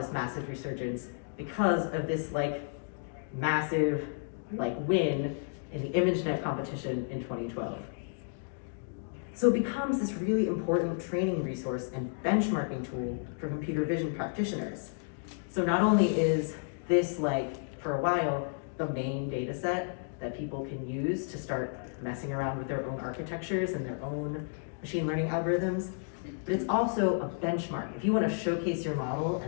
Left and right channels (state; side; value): silent; right; digital silence